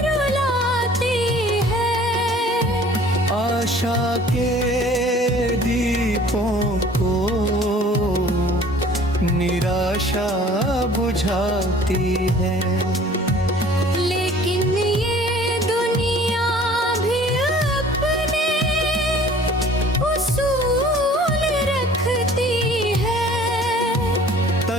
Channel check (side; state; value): both; normal; correlation 0.50